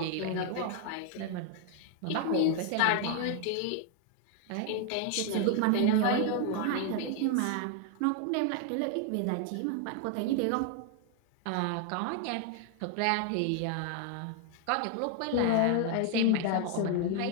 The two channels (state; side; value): different; both; correlation 0.00